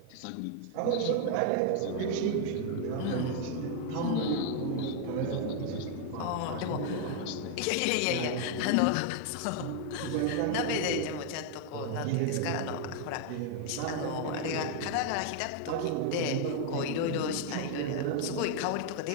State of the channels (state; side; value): different; both; correlation 0.00